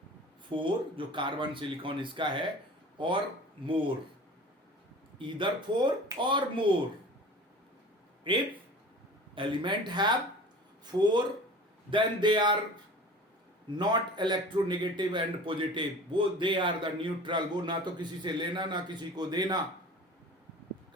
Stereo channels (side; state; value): both; normal; correlation 0.40